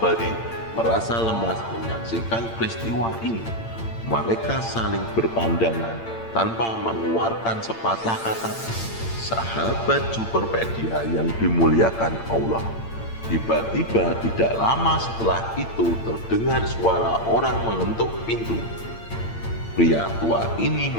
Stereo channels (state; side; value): late; right; 8.8 ms